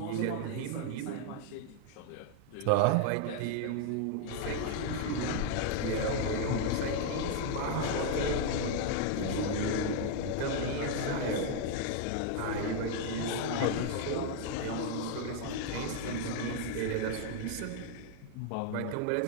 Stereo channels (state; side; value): different; both; correlation 0.00